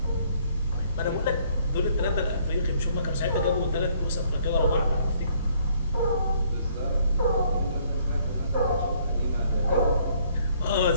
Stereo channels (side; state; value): both; inverted; correlation -0.64